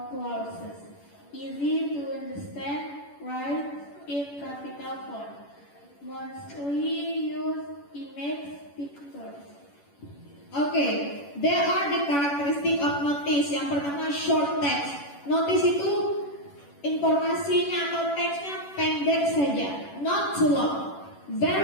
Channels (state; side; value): late; right; 11 ms